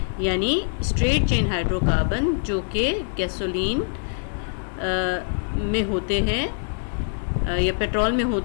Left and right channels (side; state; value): right; silent; digital silence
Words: यानी स्ट्रेट चेन हाइड्रोकार्बन जो कि गैसोलीन में होते हैं या पेट्रोल में